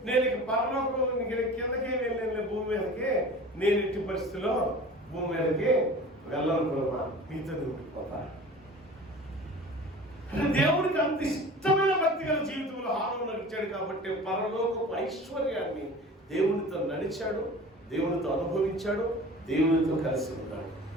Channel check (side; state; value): both; normal; correlation 0.40